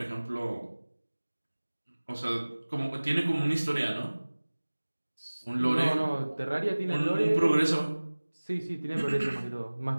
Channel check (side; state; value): both; inverted; correlation -1.00